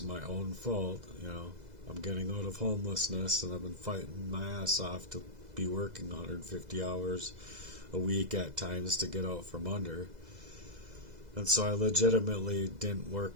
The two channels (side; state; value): left; late; 2.0 ms